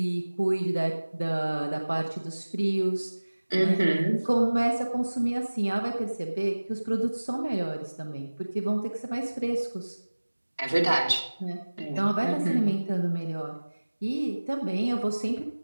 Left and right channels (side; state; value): both; inverted; correlation -1.00